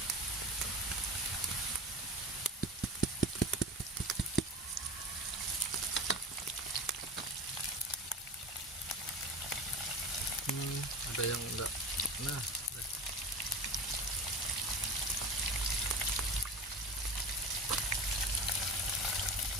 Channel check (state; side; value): normal; both; correlation 0.32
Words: Ada yang enggak. Nah,